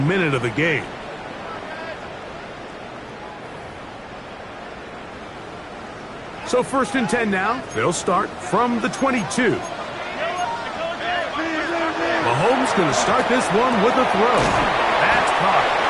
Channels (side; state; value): both; identical; correlation 1.00